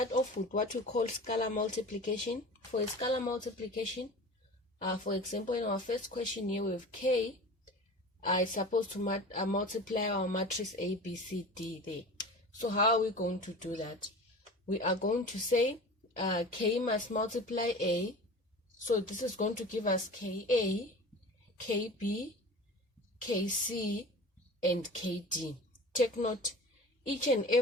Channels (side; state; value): both; normal; correlation 0.37